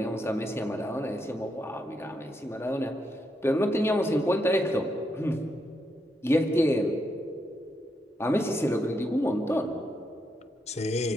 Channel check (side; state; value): both; normal; correlation 0.81